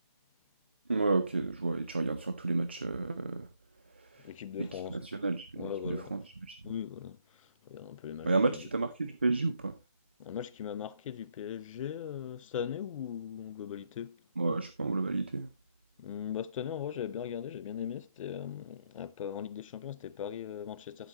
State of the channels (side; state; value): both; inverted; correlation -0.74